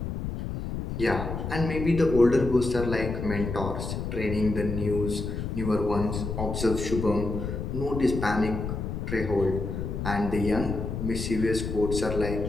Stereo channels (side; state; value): left; noise; rumble, 4 dB below the sound